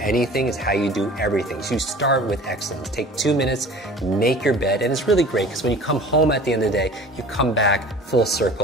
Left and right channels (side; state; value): both; normal; correlation 0.43